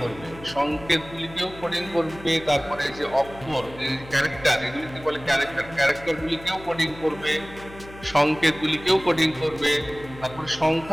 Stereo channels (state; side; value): noise; left; hum, 17 dB below the sound